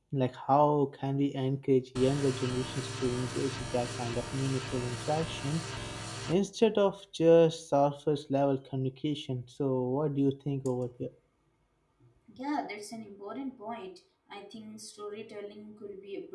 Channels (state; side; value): identical; both; correlation 1.00